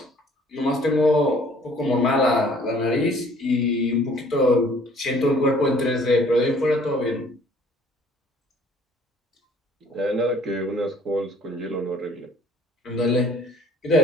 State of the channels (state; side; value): normal; both; correlation 0.56